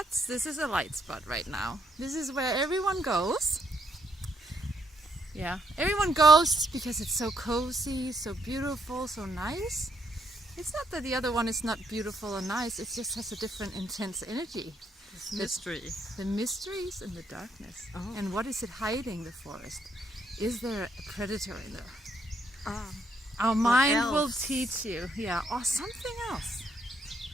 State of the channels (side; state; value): both; normal; correlation 0.74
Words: This is a light spot right now. This is where everyone goes. Yeah, everyone goes because it's so cozy, so beautiful, so nice. It's not that the other one is not beautiful or nice, it just has a different intense energy. It's mystery. The mysteries and the darkness. Oh. And what is it hiding, the forest? Is there a predator in there? Our mind will teach you. Yeah, or something else.